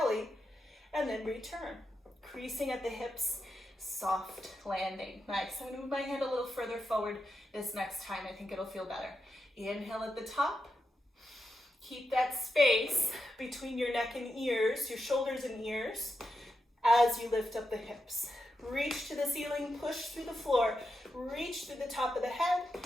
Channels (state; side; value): normal; both; correlation 0.86